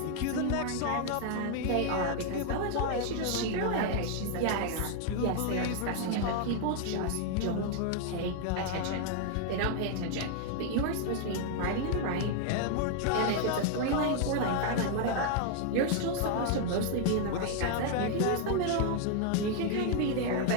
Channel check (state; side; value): different; both; correlation 0.00